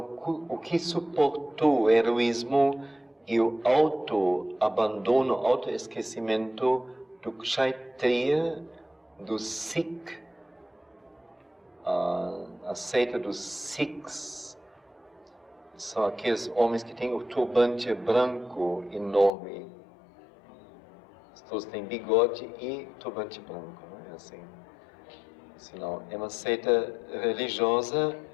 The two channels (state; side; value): drops out; right; at 19.3 s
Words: o que suportou o heroísmo e o autoabandono, autoesquecimento do Kshatriya, do Sikh, a seita dos Sikhs, são aqueles homens que têm o turbante branco enorme. Todos têm bigode e turbante branco, não é assim? Senão, é uma seita religiosa